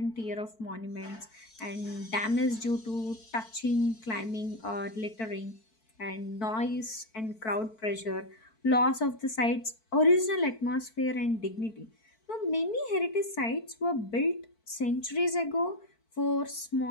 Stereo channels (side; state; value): right; late; 4.5 ms